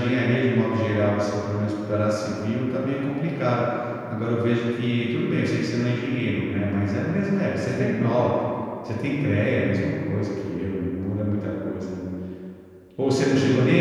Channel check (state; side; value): identical; both; correlation 1.00